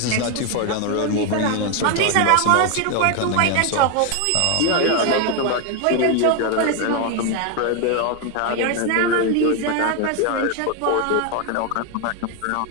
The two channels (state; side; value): different; both; correlation 0.01